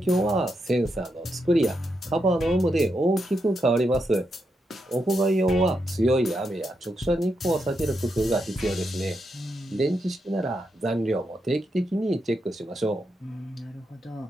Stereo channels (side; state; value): both; normal; correlation 0.83